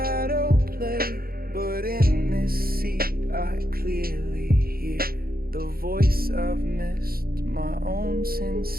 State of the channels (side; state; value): left; late; 0.43 ms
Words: play. But in this seat I clearly hear the voice I've missed, my own